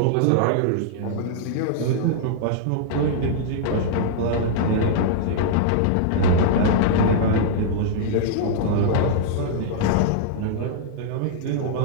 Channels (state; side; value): different; both; correlation -0.01